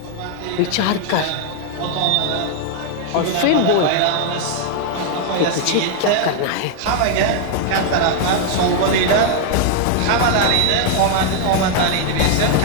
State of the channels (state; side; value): different; both; correlation 0.00